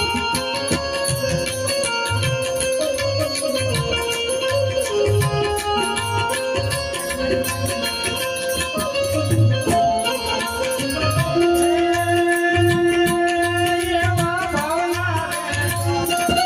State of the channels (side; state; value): both; identical; correlation 1.00